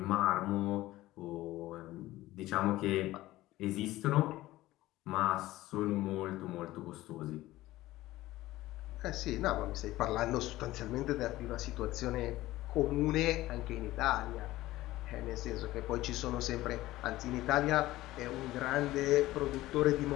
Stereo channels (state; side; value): quieter; right; 16.8 dB